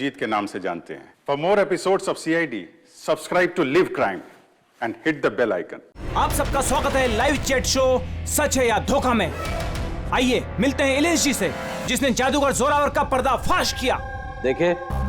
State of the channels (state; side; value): identical; both; correlation 1.00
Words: के नाम से जानते हैं। For more episodes of CID, subscribe to Live Crime and hit the bell icon. आप सबका स्वागत है लाइव चैट शो सच है या धोखा में। आइए मिलते हैं इलेश जी से, जिसने जादूगर जोरावर का पर्दाफाश किया। देखिए,